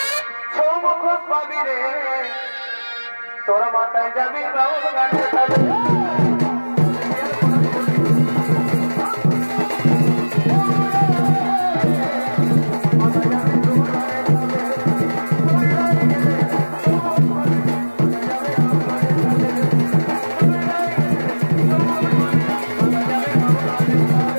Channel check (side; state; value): both; inverted; correlation -1.00